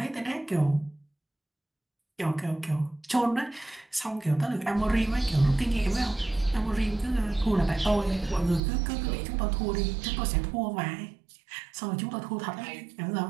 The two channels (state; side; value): drops out; left; at 8.6 s